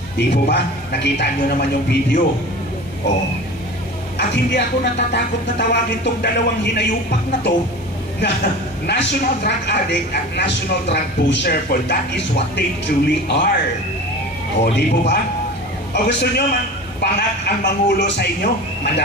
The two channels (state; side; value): normal; both; correlation 0.35